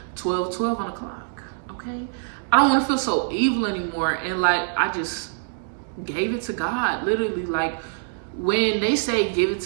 12 on the clock, okay? I don't want to feel so evil anymore. And I just gave it to God. Literally, when they say give it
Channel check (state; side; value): silent; left; digital silence